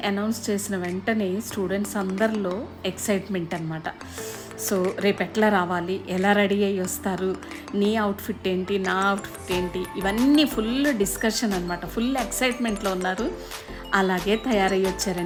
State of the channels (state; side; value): identical; both; correlation 1.00